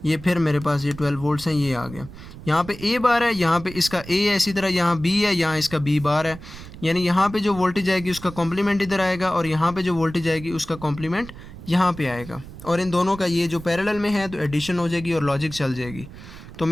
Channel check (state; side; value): noise; right; rumble, 15 dB below the sound